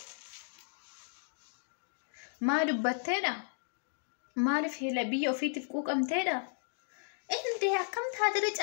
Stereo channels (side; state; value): right; silent; digital silence